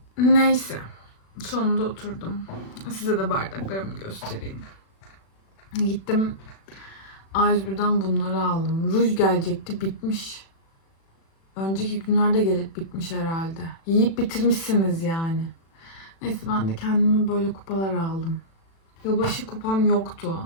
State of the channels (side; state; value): right; late; 36 ms